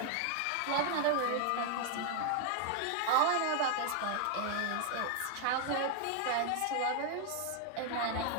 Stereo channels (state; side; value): different; both; correlation 0.01